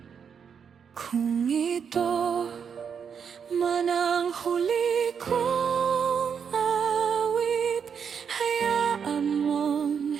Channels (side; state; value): left; quieter; 7.0 dB